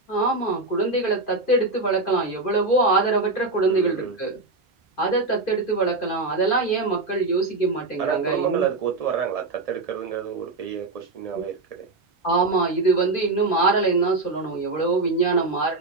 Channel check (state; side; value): quieter; left; 3.4 dB